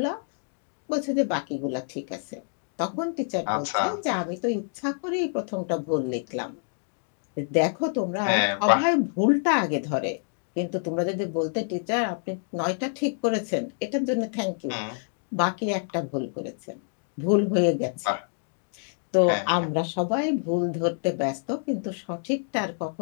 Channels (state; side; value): silent; right; digital silence